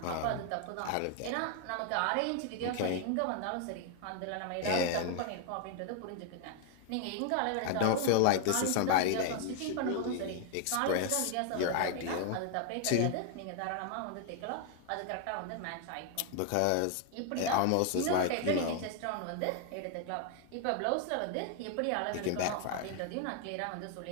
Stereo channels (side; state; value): both; different; correlation 0.00